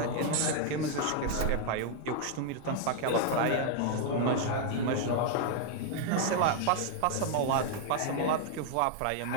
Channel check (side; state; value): both; different; correlation 0.00